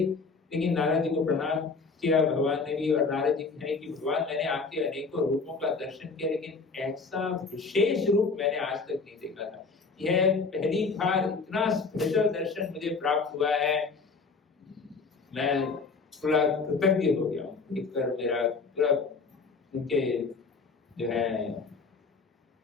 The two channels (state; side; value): quieter; right; 4.5 dB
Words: लेकिन नारद जी को प्रणाम किया भगवान ने भी, और नारद जी कहे कि भगवान मैंने आपके अनेकों रूपों का दर्शन किया, लेकिन ऐसा विशेष रूप मैंने आज तक नहीं देखा था। यह पहली बार इतना स्पेशल दर्शन मुझे प्राप्त हुआ है, मैं पूरा कृतज्ञ हो गया हूँ देखकर। मेरा पूरा उनके जो है